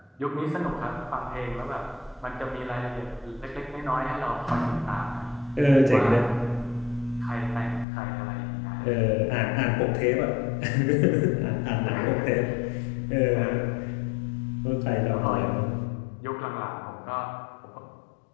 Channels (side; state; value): right; drops out; at 7.9 s